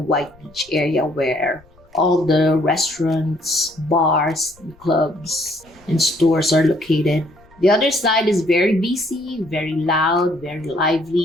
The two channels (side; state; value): left; noise; rumble, 28 dB below the sound